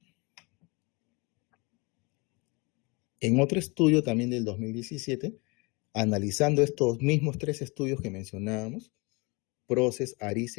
En otro estudio también del 2017, analizando estos mismos 3 estudios que mencionábamos, PROCES,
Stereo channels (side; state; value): right; quieter; 28.1 dB